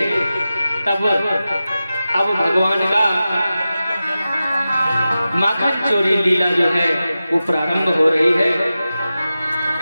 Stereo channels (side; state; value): both; inverted; correlation -0.93